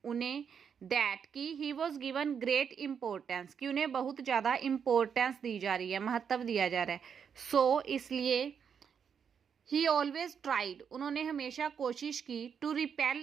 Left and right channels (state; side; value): quieter; left; 7.2 dB